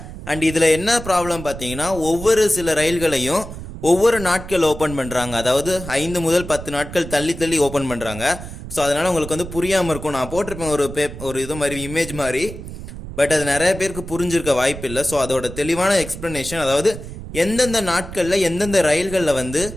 அண்ட் இதுல என்ன ப்ராப்ளம் பார்த்தீங்கன்னா ஒவ்வொரு சில ரயில்களையும் ஒவ்வொரு நாட்கள் ஓபன் பண்றாங்க. அதாவது 5 முதல் 10 நாட்கள் தள்ளி தள்ளி ஓபன் பண்றாங்க. ஸோ அதனால உங்களுக்கு வந்து புரியாம இருக்கும். நான் போட்டிருப்பேன் ஒரு இது மாதிரி இமேஜ் மாதிரி, பட் அது நிறைய பேருக்கு புரிஞ்சிருக்க வாய்ப்பு இல்லை. ஸோ அதோட தெளிவான எக்ஸ்பிளனேஷன், அதாவது எந்தெந்த நாட்களில் எந்தெந்த ரயில்களில் வந்து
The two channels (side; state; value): right; noise; rumble, 11 dB below the sound